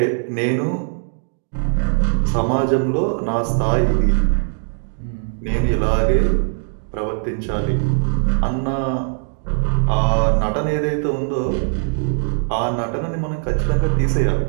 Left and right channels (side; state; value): left; silent; digital silence